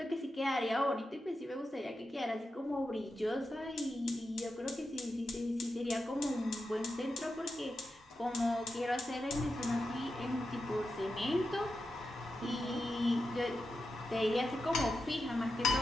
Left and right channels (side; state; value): both; normal; correlation 0.89